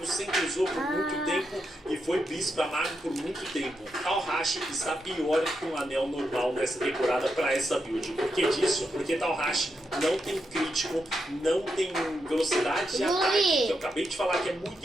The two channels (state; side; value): normal; both; correlation 0.84